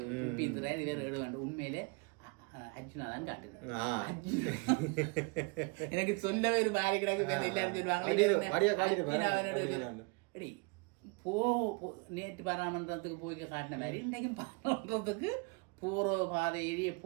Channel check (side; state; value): left; quieter; 30.6 dB